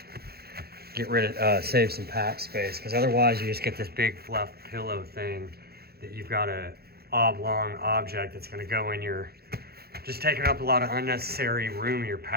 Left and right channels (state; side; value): late; left; 0.46 ms